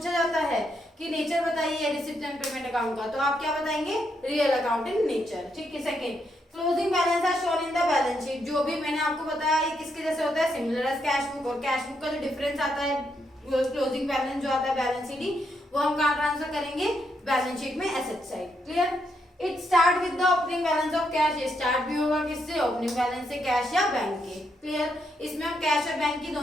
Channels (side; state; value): both; normal; correlation 0.79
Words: जाता है कि नेचर बताइए रिसिप्ट एंड पेमेंट अकाउंट का, तो आप क्या बताएंगे, रियल अकाउंट इन नेचर, ठीक है। Second, closing balance are shown in the balance sheet. जो भी मैंने आपको बताया ये किसके जैसे होता है, सिमिलर एज कैश बुक। और कैश बुक का जो डिफरेंस आता है, क्लोजिंग बैलेंस जो आता है बैलेंस शीट, वो हम कहाँ ट्रांसफर करेंगे, बैलेंस शीट में asset side. Clear? It start with the opening balance of cash. ये स्टार्ट भी होगा किससे, ओपनिंग बैलेंस से, कैश या बैंक के। क्लियर? इसमें हम कैश और बैंक की